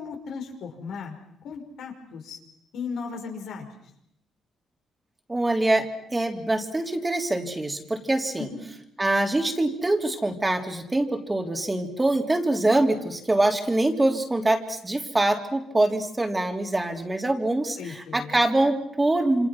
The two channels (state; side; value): normal; both; correlation 0.96